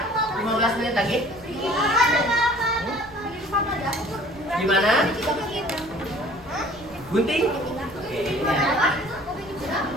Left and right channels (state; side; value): noise; right; rumble, 23 dB below the sound